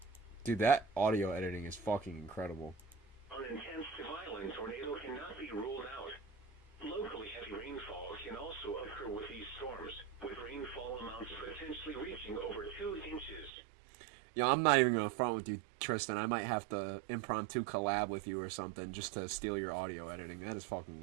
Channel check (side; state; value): left; drops out; at 13.5 s